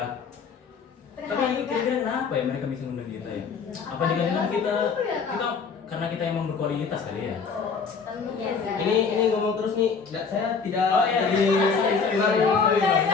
Tapi kira-kira kenapa ya mereka bisa ngundang kita ya? Apa dengan kita karena kita emang berkualitas kali ya? Biasa. Ini ngomong terus nih, saya tidak Oh, iya. jadi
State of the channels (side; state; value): right; quieter; 5.5 dB